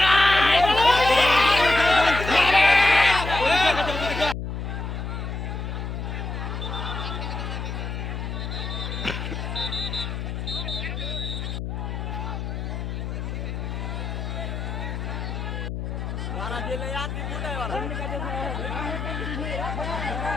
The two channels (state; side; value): noise; left; hum, 4 dB below the sound